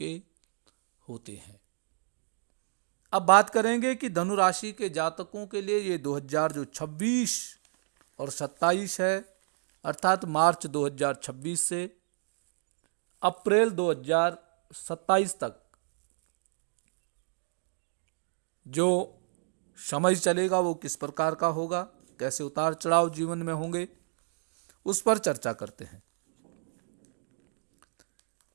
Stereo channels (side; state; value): left; silent; digital silence